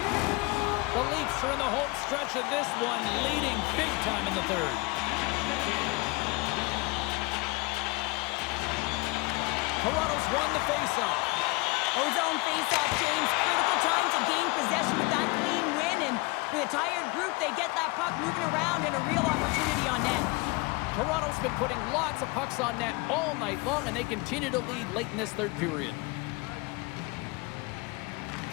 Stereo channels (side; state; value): right; quieter; 25.9 dB